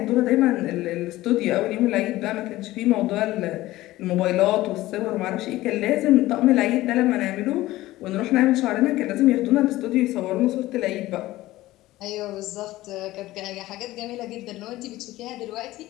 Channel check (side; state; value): right; quieter; 16.9 dB